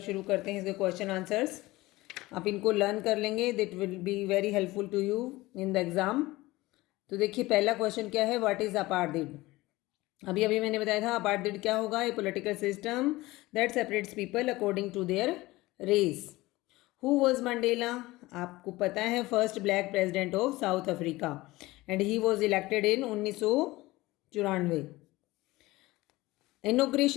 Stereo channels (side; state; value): right; quieter; 19.5 dB